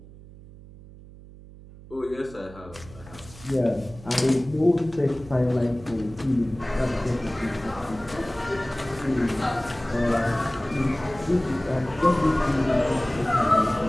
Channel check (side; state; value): right; noise; hum, 19 dB below the sound